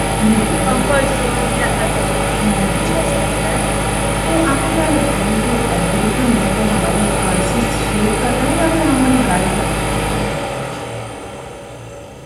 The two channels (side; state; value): both; identical; correlation 1.00